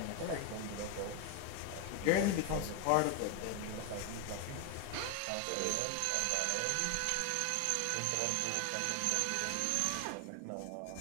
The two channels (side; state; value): both; different; correlation 0.01